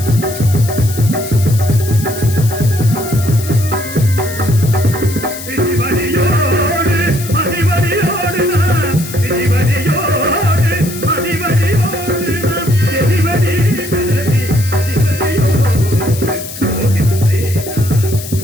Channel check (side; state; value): left; noise; hiss, 11 dB below the sound